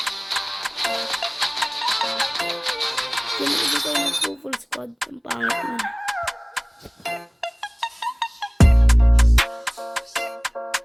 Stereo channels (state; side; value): identical; both; correlation 1.00